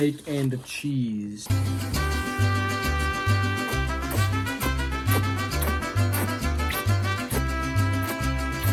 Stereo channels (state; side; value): identical; both; correlation 1.00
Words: and cheese. I